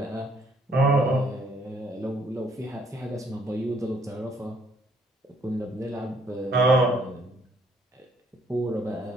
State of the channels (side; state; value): both; normal; correlation 0.65